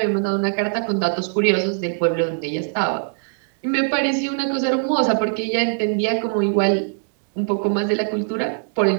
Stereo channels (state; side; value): silent; left; 65 dB below the other